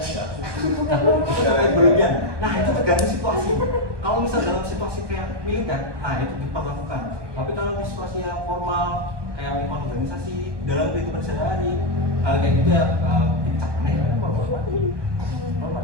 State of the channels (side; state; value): left; late; 1.2 ms